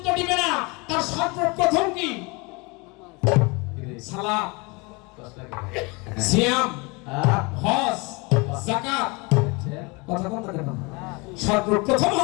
বেনা। তার সর্বপ্রথম কি? সালাত, সিয়াম, হজ, যাকাত। কথা কোনটা কেন? সর্বপ্রথম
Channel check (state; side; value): quieter; right; 27.8 dB